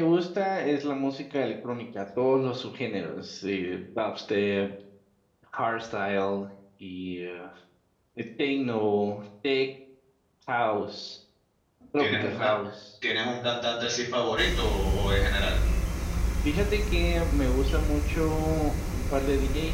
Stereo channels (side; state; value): both; identical; correlation 1.00